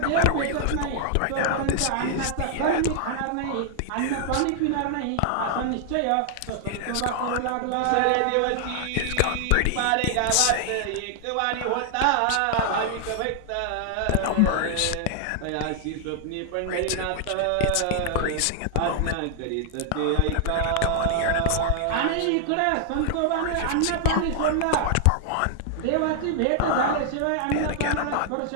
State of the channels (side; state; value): both; different; correlation 0.00